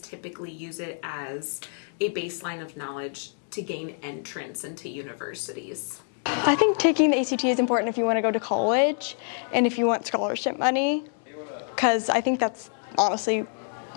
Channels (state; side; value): silent; right; 60 dB below the other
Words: use it as a baseline of knowledge to gain entrance into universities. I think taking the ACT is important if you want to go to college and if you want scholarship money, because I think that's honestly